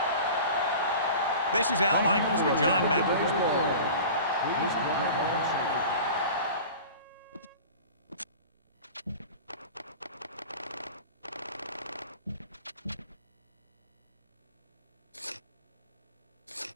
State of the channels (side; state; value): both; inverted; correlation -0.38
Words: This is Al Michaels with John Mendel. Please welcome